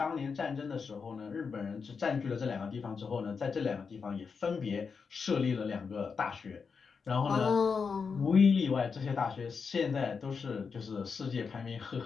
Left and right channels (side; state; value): right; quieter; 5.5 dB